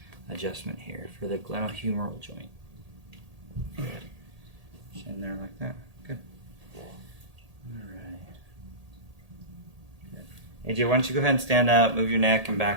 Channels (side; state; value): left; late; 1.8 ms